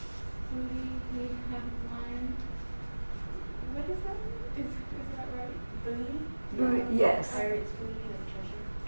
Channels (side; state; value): both; inverted; correlation -1.00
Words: booty he had won. What is that? Is that right? Booty? Yes. Pirates' booty and treasure.